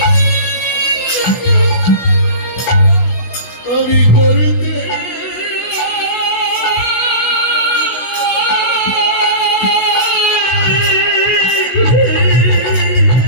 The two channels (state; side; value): late; right; 16 ms